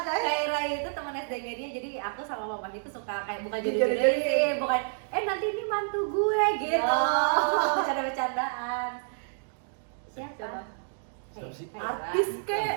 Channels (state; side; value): silent; left; digital silence